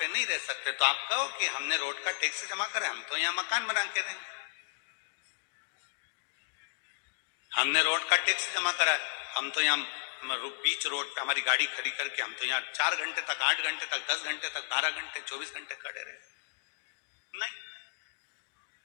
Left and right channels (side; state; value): right; silent; digital silence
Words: नहीं रह सकते। तो आप कहो कि हमने रोड का टैक्स जमा करा, हम तो यहाँ मकान बना के रहेंगे। हमने रोड का टैक्स जमा करा, हम तो यहाँ बीच रोड पे हमारी गाड़ी खड़ी करके हम तो यहाँ 4 घंटे तक, 8 घंटे तक, 10 घंटे तक, 12 घंटे, 24 घंटे खड़े रहे। नहीं,